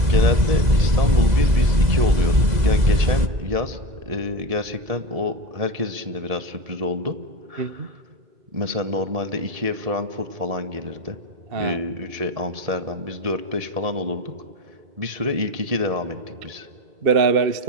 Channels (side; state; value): left; late; 2.0 ms